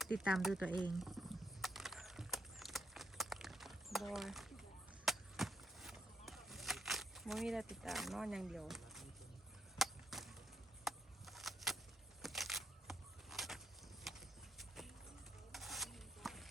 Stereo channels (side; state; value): both; normal; correlation 0.75